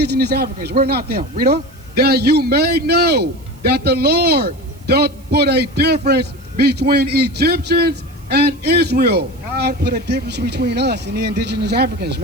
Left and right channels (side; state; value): right; noise; hiss, 28 dB below the sound